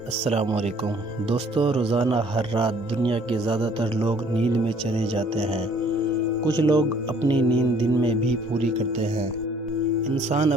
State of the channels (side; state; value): both; normal; correlation 0.58